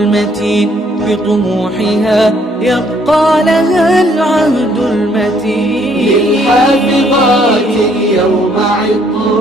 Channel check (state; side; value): normal; both; correlation 0.66